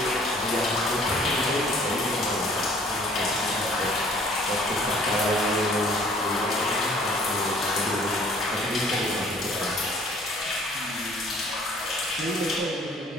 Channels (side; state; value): both; normal; correlation 0.55